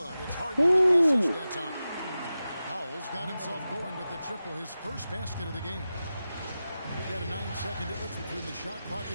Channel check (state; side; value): inverted; both; correlation -0.93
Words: It's Harden with the assist that time. Powell's got himself going with the triple, his first basket of the game. We've got a 9-second difference between the shot clock